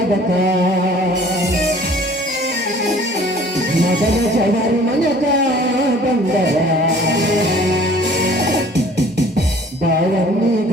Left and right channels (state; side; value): normal; both; correlation 0.51